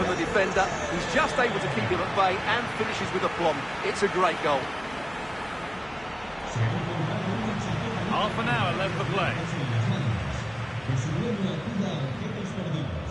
from the defender, he's just able to keep him at bay and finishes with aplomb. It's a great goal. Half an hour left to play.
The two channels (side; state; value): left; noise; hum, 22 dB below the sound